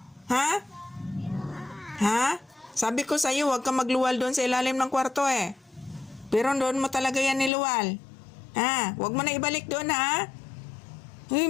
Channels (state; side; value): drops out; right; at 7.5 s